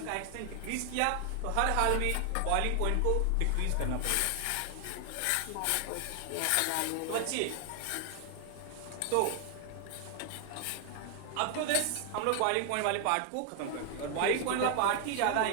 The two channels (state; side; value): different; both; correlation 0.00